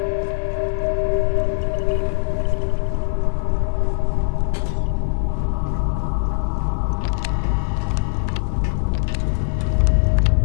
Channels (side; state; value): right; silent; digital silence